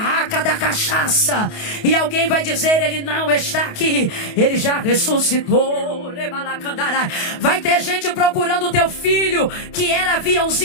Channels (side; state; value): right; late; 28 ms